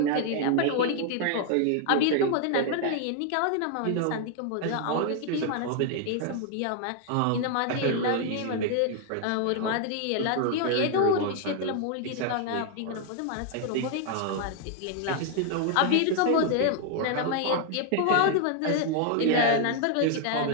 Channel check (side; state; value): both; different; correlation 0.00